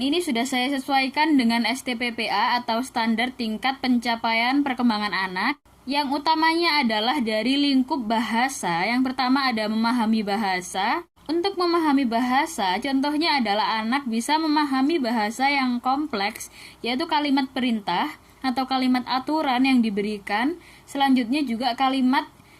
sudah saya sesuaikan dengan STPPA atau standar tingkat pencapaian perkembangan anak. Yang utamanya adalah dari lingkup bahasa. Yang pertama ada memahami bahasa. Untuk memahami bahasa, contohnya adalah anak bisa memahami bahasa yang kompleks, yaitu kalimat perintah atau kalimat aturan yang diberikan. Selanjutnya juga kalimat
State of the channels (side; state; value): both; identical; correlation 1.00